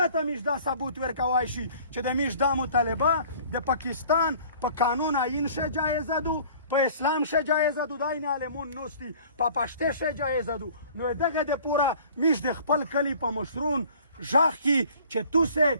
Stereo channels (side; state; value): both; inverted; correlation -0.50